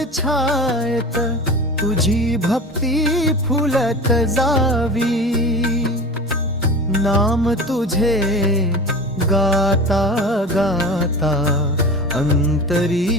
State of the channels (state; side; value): normal; both; correlation 0.33